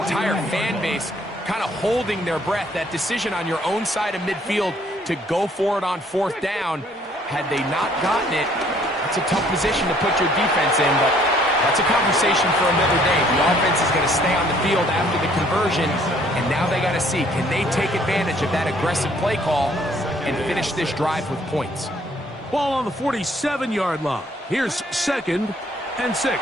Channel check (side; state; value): both; normal; correlation 0.62